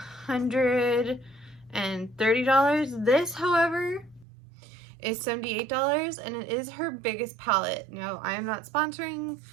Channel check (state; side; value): drops out; left; at 4.2 s